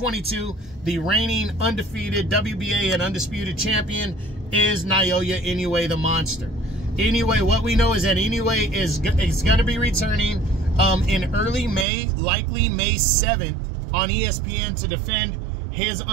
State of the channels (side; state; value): left; drops out; at 11.9 s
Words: the reigning undefeated WBA and undisputed champion is Naoya Inoue, the Monster. Inoue, what we know is that Inoue is going to be returning in early May, likely May 7th, on ESPN to defend his